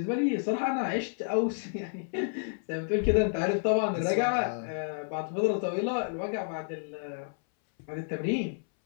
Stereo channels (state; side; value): silent; right; 58 dB below the other